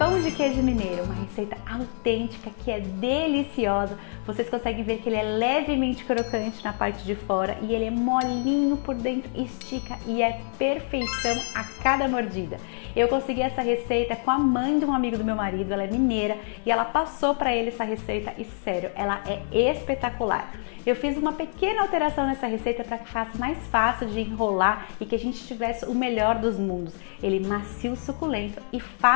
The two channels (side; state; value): right; silent; 58 dB below the other